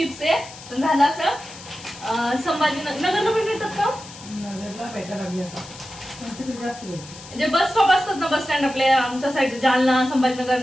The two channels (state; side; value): noise; left; hiss, 17 dB below the sound